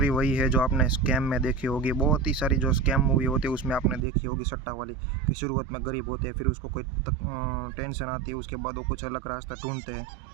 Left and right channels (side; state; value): left; drops out; at 4.0 s